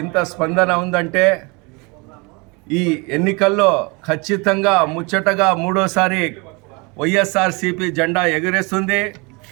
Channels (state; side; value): quieter; left; 28.8 dB